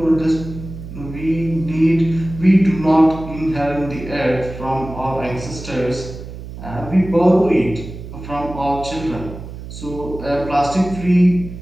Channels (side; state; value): right; noise; hum, 12 dB below the sound